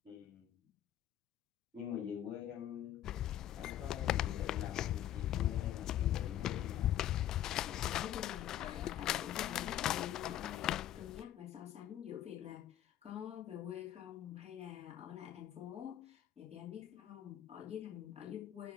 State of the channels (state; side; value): quieter; right; 11.8 dB